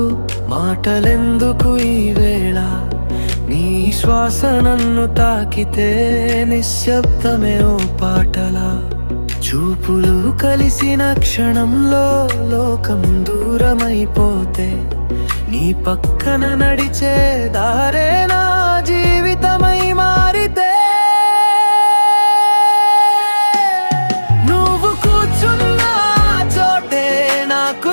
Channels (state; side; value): inverted; both; correlation -1.00